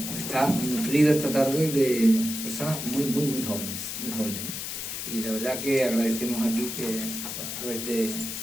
está nutrido esta tarde de personas muy jóvenes, Y la verdad que agradecemos aquí que a través de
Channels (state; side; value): noise; left; hiss, 5 dB below the sound